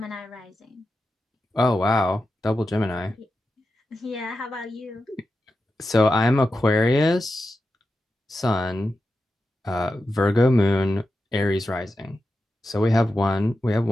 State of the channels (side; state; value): both; normal; correlation 0.90